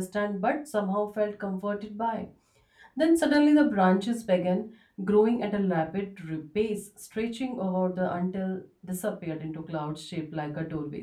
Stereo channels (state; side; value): identical; both; correlation 1.00